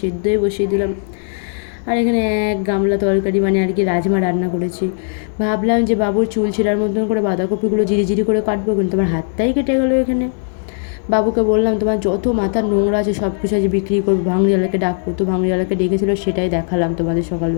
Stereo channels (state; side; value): silent; right; digital silence